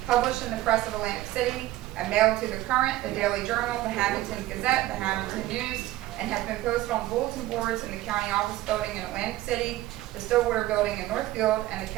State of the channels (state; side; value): quieter; left; 16.0 dB